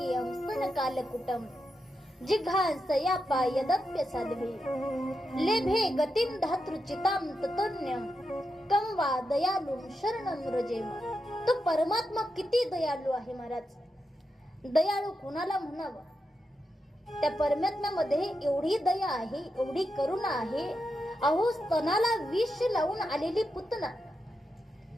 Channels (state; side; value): normal; both; correlation 0.86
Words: स्तन कालकुटम जिघांस या पायदप्य साध्वी लेभे गतिं धातृचिताम ततोन्यम कम वा दयालुम शरणं व्रजेम. तो परमात्मा किती दयाळू आहे महाराज. दयाळू कुणाला म्हणावं, त्या परमात्म्यामध्ये एवढी दया आहे, एवढी करुणा आहे. अहो स्तनाला विष लावून आलेली पुतना